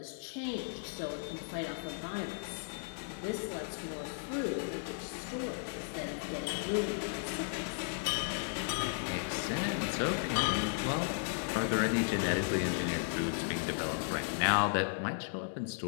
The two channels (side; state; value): right; silent; digital silence